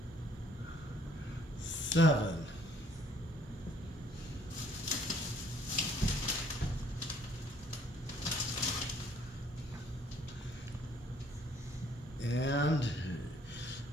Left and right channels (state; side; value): normal; both; correlation 0.62